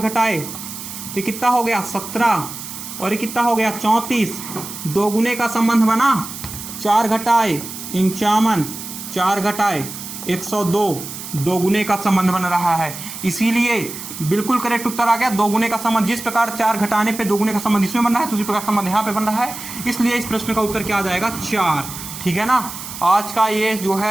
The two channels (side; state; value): right; noise; hiss, 10 dB below the sound